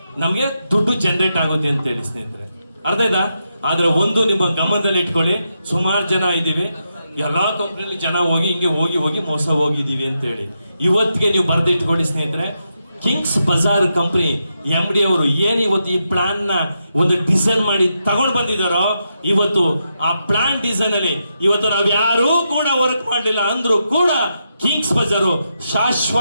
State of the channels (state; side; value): inverted; both; correlation -0.84